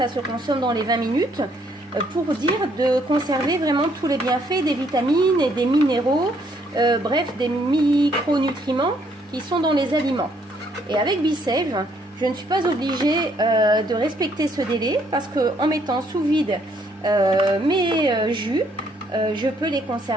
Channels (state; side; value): normal; both; correlation 0.68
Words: se consomme dans les 20 minutes pour dire de conserver vraiment tous les bienfaits des vitamines et des minéraux, bref des micronutriments qui sont dans les aliments. Et avec BeSave, je ne suis pas obligée de respecter ce délai parce qu'en mettant sous vide mes jus, je peux les